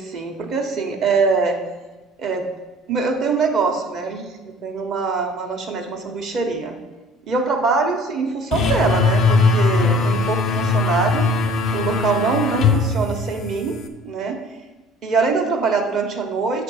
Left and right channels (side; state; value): both; normal; correlation 0.50